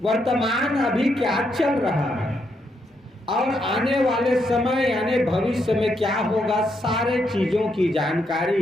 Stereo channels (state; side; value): normal; both; correlation 0.78